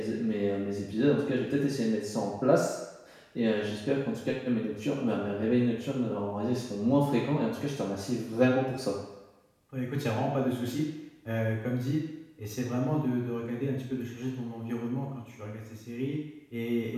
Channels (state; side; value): identical; both; correlation 1.00